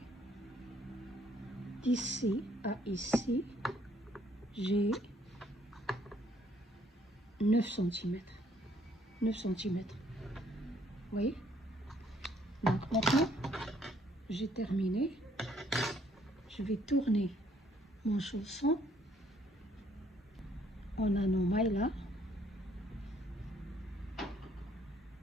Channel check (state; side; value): normal; both; correlation 0.65